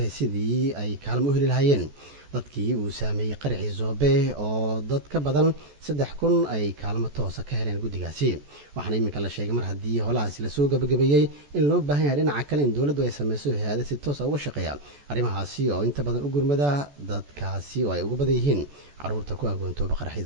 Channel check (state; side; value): late; left; 14 ms